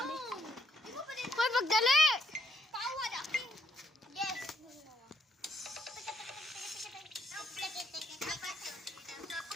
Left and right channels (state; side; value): normal; both; correlation 0.71